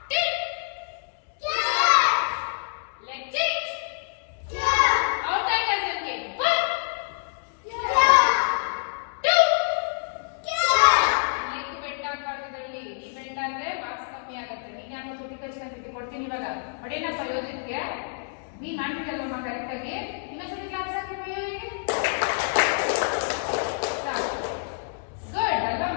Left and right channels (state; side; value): silent; right; digital silence